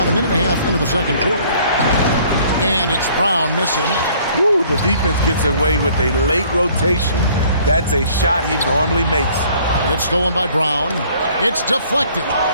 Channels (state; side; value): inverted; both; correlation -0.57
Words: a minute and a half into the second quarter. And it's Brown missing. Woo, the defense gets away with a late rotation. That's a shot he normally makes. It's stolen by Brown. It's deflected.